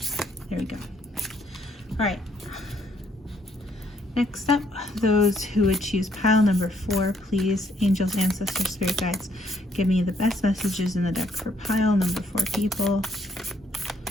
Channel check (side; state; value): both; normal; correlation 0.70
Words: There we go. All right, next up, those who would choose pile number 4, please, angels, ancestors, spirit guides, give me the best messages in the deck for pile number 4 people.